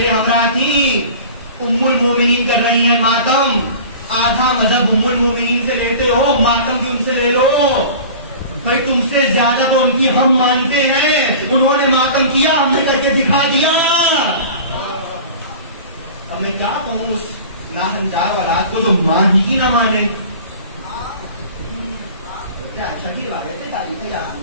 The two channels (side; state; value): both; inverted; correlation -0.39